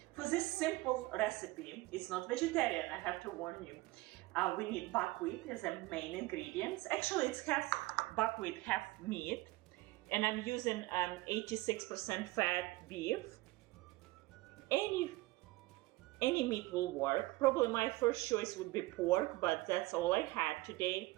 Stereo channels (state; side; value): quieter; left; 20.3 dB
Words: For this simple recipe, it's not vegetarian, I have to warn you. We need buckwheat as a main ingredients. Actually, it's half buckwheat, half meat. And I'm using 86% fat beef. Any meat will work. Probably my first choice would be pork, but that's all I had today.